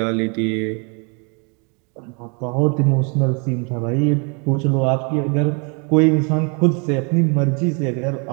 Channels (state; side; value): quieter; left; 34.8 dB